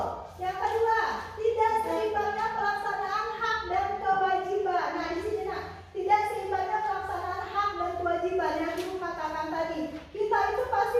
yang kedua, tidak seimbangnya pelaksanaan hak dan kewajiban. Nah di sini tidak seimbangnya pelaksanaan hak dan kewajiban yang ibu katakan tadi. Kita itu pasti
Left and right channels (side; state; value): both; identical; correlation 1.00